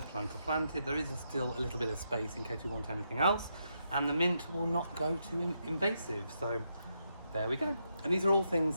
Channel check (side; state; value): both; inverted; correlation -0.81